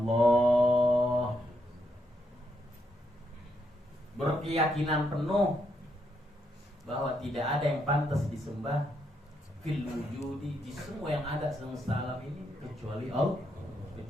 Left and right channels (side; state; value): both; normal; correlation 0.78